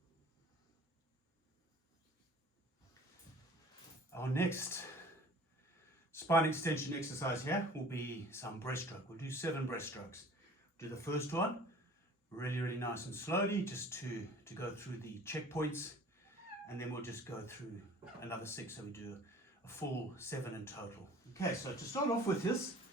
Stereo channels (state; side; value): normal; both; correlation 0.47